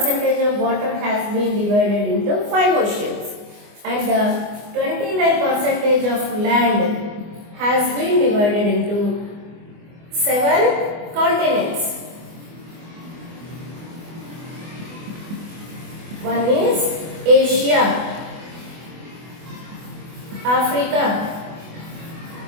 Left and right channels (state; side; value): late; left; 24 ms